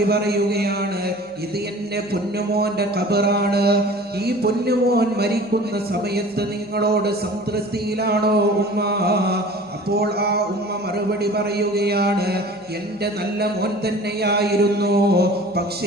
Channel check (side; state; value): right; noise; hum, 30 dB below the sound